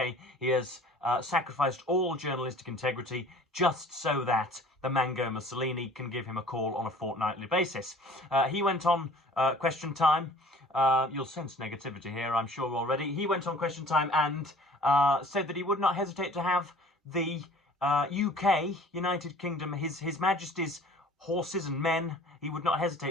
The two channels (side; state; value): both; normal; correlation 0.49